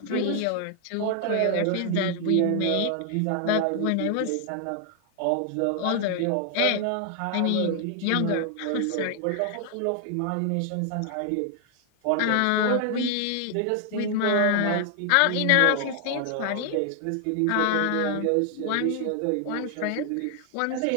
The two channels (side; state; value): both; different; correlation 0.00